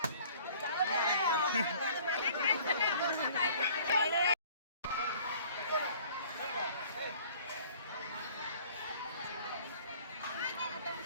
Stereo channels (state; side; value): inverted; both; correlation -0.52